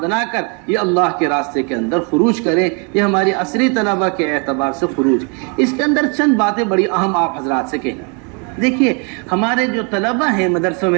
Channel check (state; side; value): quieter; left; 35.8 dB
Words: بنا کر یہ اللہ کے راستے کے اندر خروج کریں۔ یہ ہماری عصری طلبہ کے اعتبار سے خروج۔ اس کے اندر چند باتیں بڑی اہم آپ حضرات سے کہنا۔ دیکھیے ہمارے جو طلبہ ہیں مدرسوں